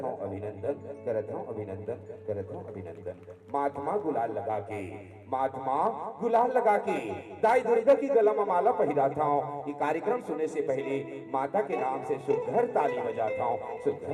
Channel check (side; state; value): both; identical; correlation 1.00